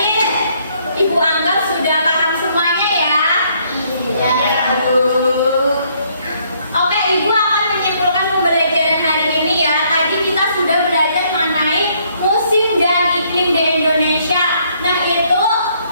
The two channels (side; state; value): both; inverted; correlation -0.67